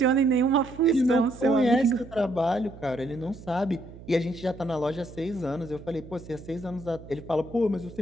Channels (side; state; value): right; noise; hum, 17 dB below the sound